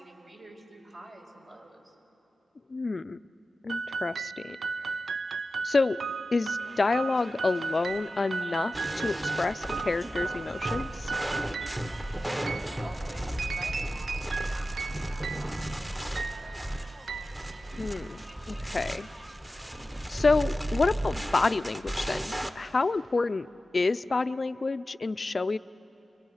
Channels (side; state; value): both; normal; correlation 0.94